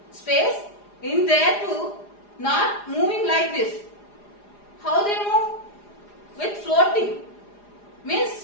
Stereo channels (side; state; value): right; late; 4.9 ms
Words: space, in there too, not moving like this. How they move? With floating. Means